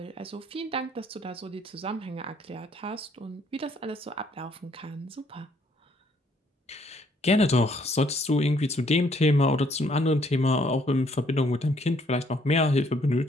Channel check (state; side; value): normal; both; correlation 0.66